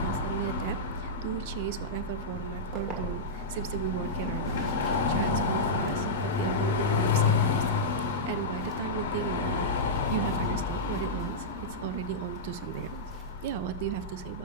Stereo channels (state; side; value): normal; both; correlation -0.10